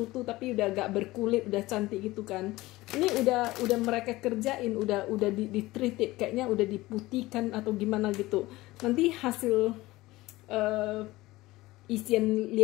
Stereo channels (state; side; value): quieter; right; 18.9 dB